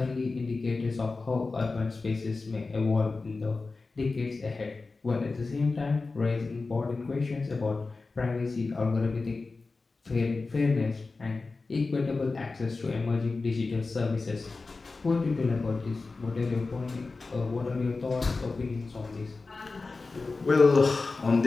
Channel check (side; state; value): right; quieter; 3.8 dB